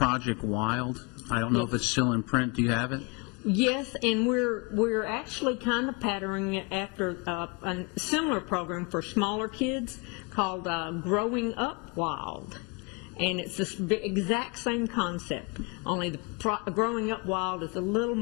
Wild. I don't know if it's still in print. Do you have it? Yes, and we're actually kind of patterning it after a similar program for smaller kids called Growing Up Wild. And it's the exact same concept, only the Growing Up Wild is a little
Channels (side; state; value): right; quieter; 30.6 dB